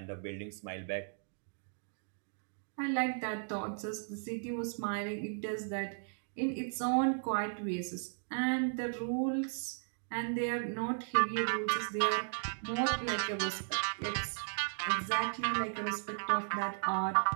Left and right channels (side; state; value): left; silent; digital silence